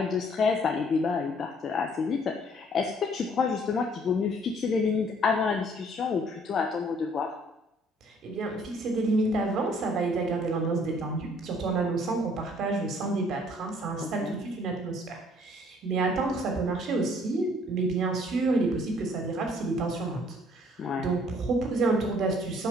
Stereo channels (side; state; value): both; normal; correlation 0.60